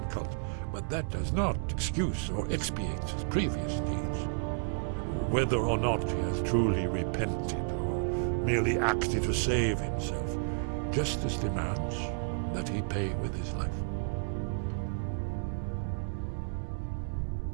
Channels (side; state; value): left; silent; 57 dB below the other